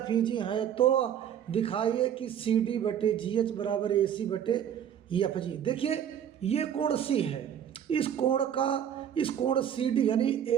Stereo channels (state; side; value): quieter; left; 9.3 dB